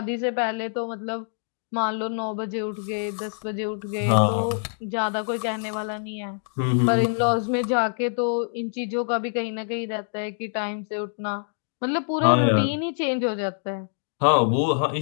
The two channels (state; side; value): silent; right; digital silence